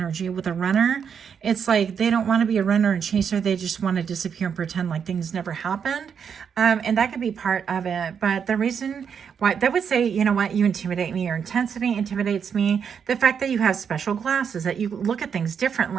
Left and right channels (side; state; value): left; quieter; 7.2 dB